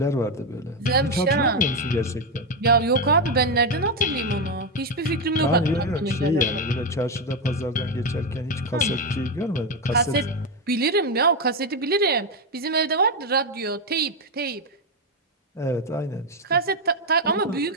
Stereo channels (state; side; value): normal; both; correlation 0.07